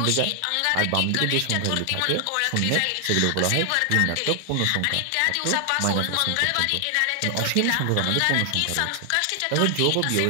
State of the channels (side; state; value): both; different; correlation 0.00